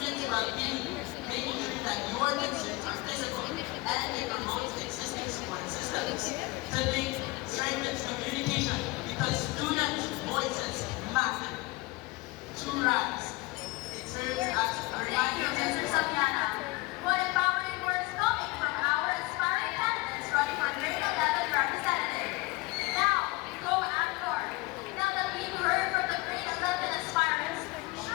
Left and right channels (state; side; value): quieter; right; 22.5 dB